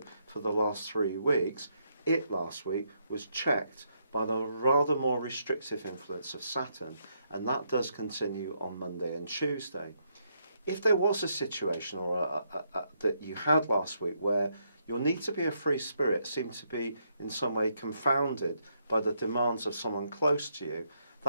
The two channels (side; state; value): both; inverted; correlation -0.76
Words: for the last 3 weeks, it last week was checked by the rather more restrictive influence of Saturn, and that does continue on Monday and Tuesday. If there was a situation or that you had last week where your need to be a free spirit seemed to be in some way confounded by the demands of someone close to you,